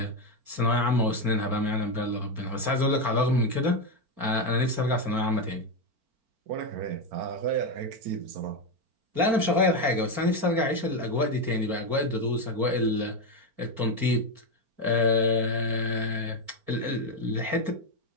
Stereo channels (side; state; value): left; late; 4.4 ms